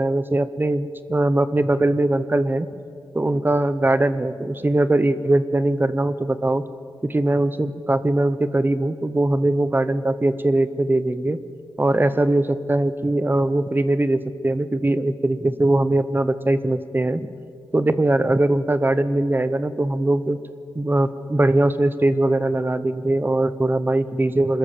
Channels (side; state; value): both; normal; correlation 0.95